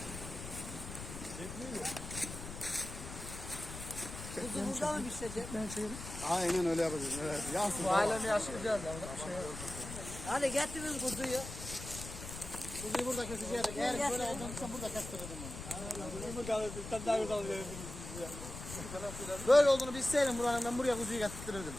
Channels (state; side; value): noise; left; rumble, 10 dB below the sound